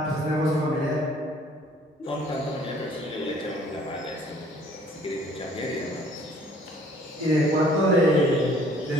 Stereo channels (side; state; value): both; normal; correlation 0.57